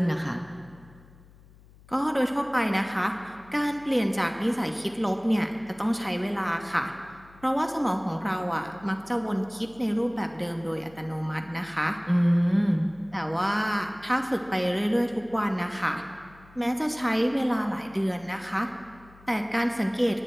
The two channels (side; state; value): left; noise; hum, 24 dB below the sound